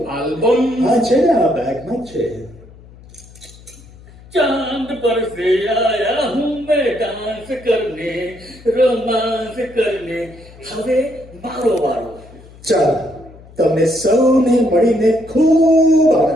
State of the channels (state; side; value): noise; left; hum, 22 dB below the sound